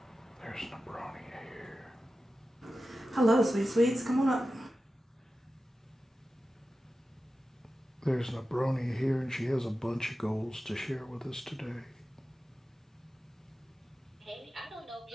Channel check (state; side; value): normal; both; correlation 0.93